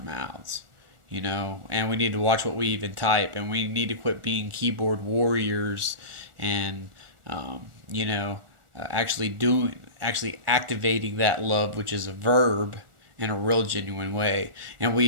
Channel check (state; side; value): late; left; 1.4 ms